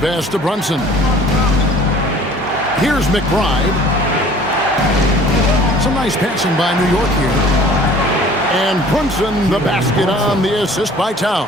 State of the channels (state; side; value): normal; both; correlation 0.50